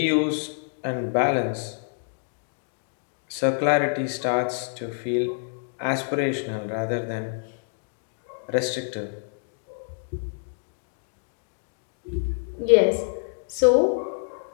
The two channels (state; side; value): silent; right; digital silence